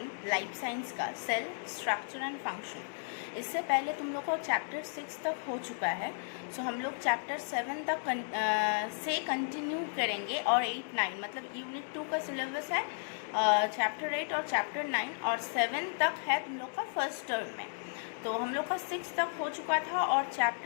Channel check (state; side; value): silent; right; digital silence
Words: लाइफ साइंस का, सेल स्ट्रक्चर एंड फंक्शन। इससे पहले तुम लोग का चैप्टर 6 तक हो चुका है। सो हम लोग चैप्टर 7 तक से कंटिन्यू करेंगे और 8, 9 मतलब यूनिट 2 का सिलेबस है चैप्टर 8 और चैप्टर 9 और 7 तक है तुम लोग का फर्स्ट टर्म में। तो हम लोग का 6 तक हो चुका था और